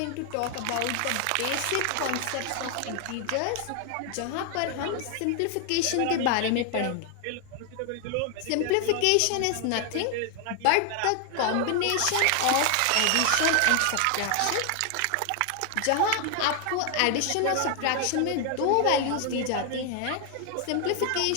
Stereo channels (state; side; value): different; both; correlation 0.00